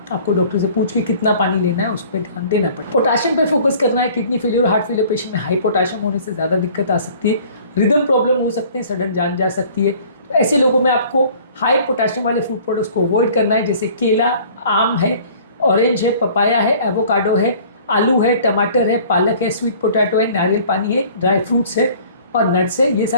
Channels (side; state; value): both; inverted; correlation -0.51